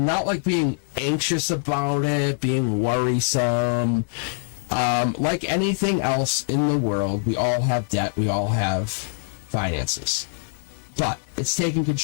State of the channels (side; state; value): right; silent; 63 dB below the other